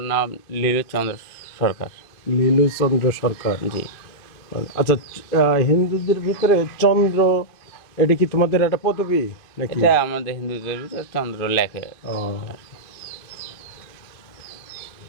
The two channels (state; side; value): late; right; 2.6 ms